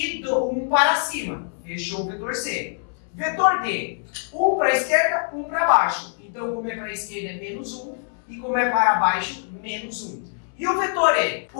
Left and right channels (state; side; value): silent; right; 63 dB below the other